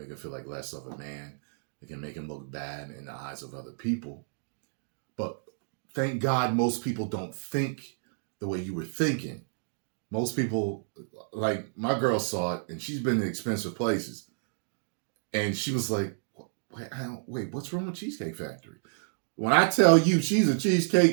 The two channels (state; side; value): silent; left; digital silence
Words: him feel like less of a man. It can make him look bad in the eyes of other people. But thank God most people don't think the way you were thinking. Most people, like my girl saw it, and she's been in expensive places. And she was like, wait, what's wrong with Cheesecake Factory? When I tell you she's a